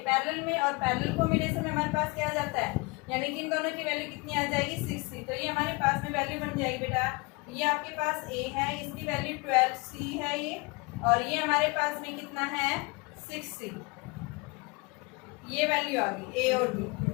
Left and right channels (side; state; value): right; quieter; 27.5 dB